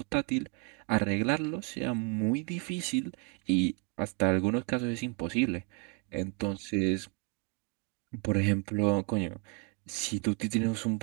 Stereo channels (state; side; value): quieter; left; 33.8 dB